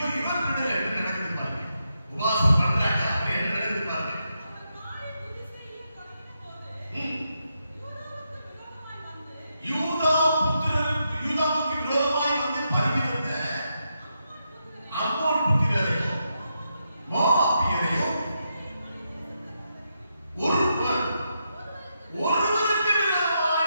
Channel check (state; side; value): inverted; both; correlation -0.83